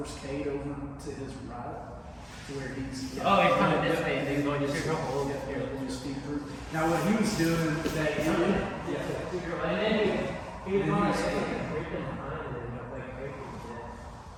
Cade over to his right, to where he's. Oh, he's coming this way, and he's going to sugar hole. Yeah, just feed through. Now, what he was doing that he did, And then he was going like breaking behind, and then he was like breaking it.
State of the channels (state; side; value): identical; both; correlation 1.00